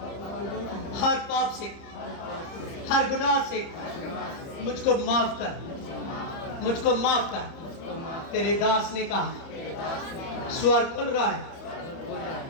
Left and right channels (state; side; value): late; right; 30 ms